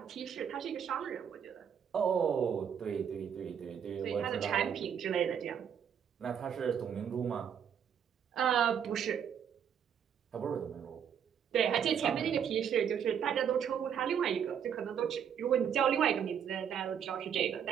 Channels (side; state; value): left; quieter; 8.2 dB